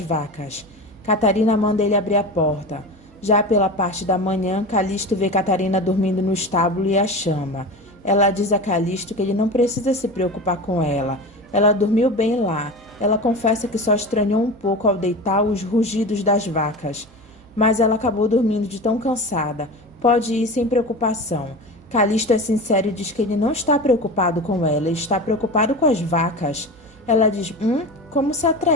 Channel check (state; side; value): noise; right; hum, 27 dB below the sound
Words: vacas. Catarina manda ele abrir a porta. Já pela parte da manhã, Calixto vê Catarina dormindo no estábulo e a chama. Ela diz a Calixto que ele não precisa se preocupar com ela. Ela dormiu bem lá. Ela confessa que só estranhou um pouco ao deitar os rugidos das vacas. Mas ela acabou dormindo de tão cansada. Pode ir sem preocupação. Calixto é sincero e diz que ele não está preocupado com ela, ele está preocupado com as vacas. Ela diz: como se